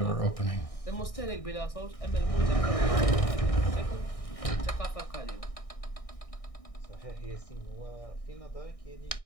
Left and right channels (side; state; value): right; late; 1.6 ms